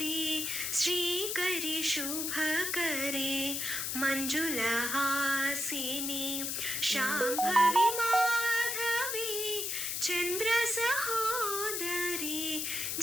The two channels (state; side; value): noise; left; hiss, 1 dB below the sound